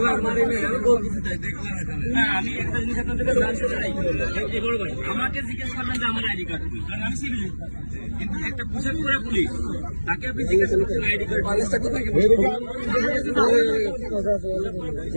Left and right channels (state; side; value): inverted; both; correlation -1.00